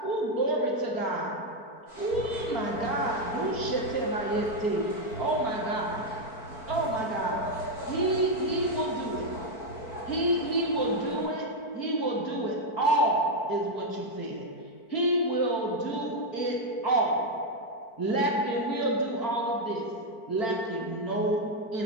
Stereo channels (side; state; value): right; late; 4.4 ms